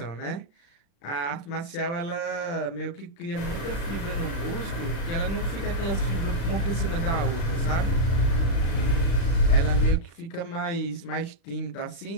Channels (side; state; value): right; late; 35 ms